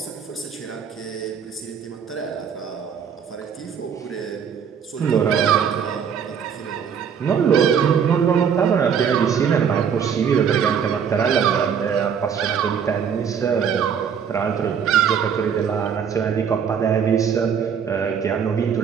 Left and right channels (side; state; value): left; quieter; 7.4 dB